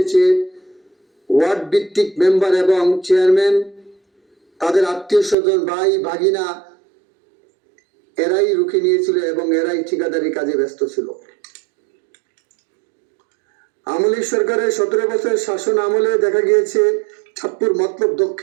ওয়ার্ড ভিত্তিক মেম্বার এবং চেয়ারম্যান তাদের আত্মীয় স্বজন ভাই ভাগিনা এরাই রুখে নিয়েছিল এবং এরাই ঠিকাদারি কাজে ব্যস্ত ছিল। আওয়ামী লীগ সরকারের 17 বছর শাসন আমলে দেখা গিয়েছে চাঁদপুর মতলব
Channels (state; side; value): drops out; left; at 5.4 s